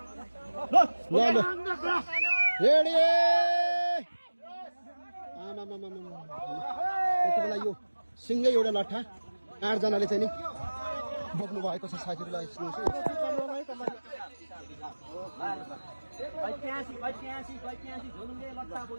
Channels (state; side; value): inverted; both; correlation -1.00